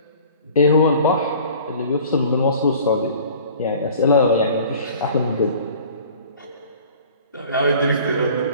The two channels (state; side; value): inverted; both; correlation -0.47